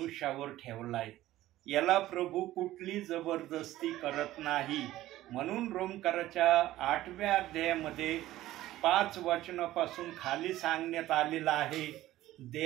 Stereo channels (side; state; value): left; quieter; 15.2 dB